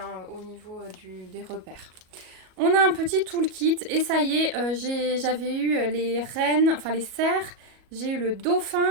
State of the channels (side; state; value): left; late; 37 ms